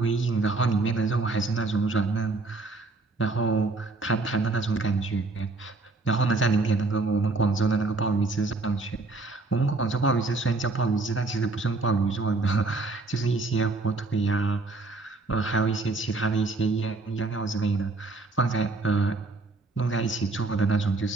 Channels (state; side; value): quieter; left; 3.4 dB